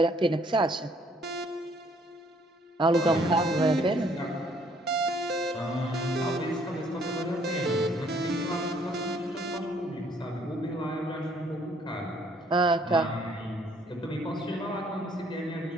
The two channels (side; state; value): both; normal; correlation 0.63